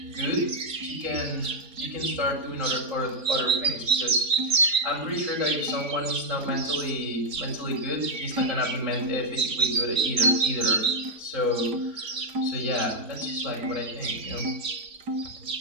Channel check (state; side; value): late; left; 4.4 ms